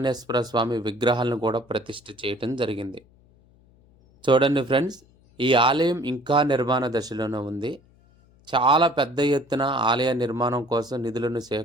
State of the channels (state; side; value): noise; left; hum, 30 dB below the sound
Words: స్వామి విగ్రహాలను కూడా ప్రతిష్ఠ చేయటం జరిగింది. చూడండి ఫ్రెండ్స్, ఈ ఆలయం ఇంకా నిర్మాణ దశలోనే ఉంది. చాలా పెద్ద ఎత్తున ఆలయ నిర్మాణం కోసం నిధులను